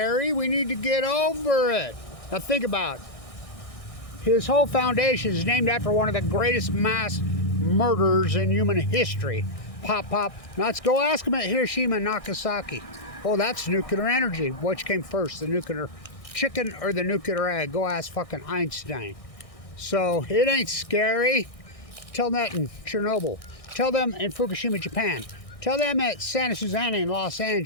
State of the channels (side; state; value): right; late; 1.6 ms